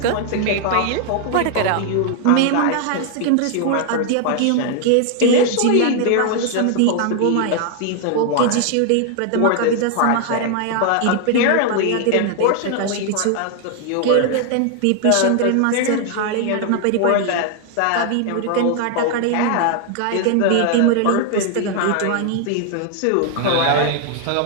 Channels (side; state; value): both; different; correlation 0.00